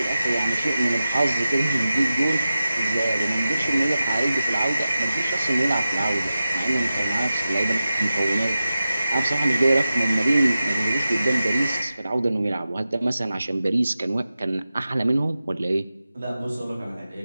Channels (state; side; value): inverted; both; correlation -0.93